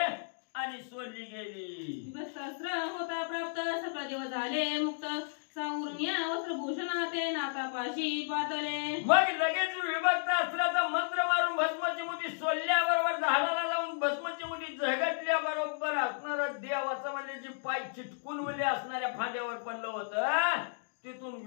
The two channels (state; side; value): silent; right; digital silence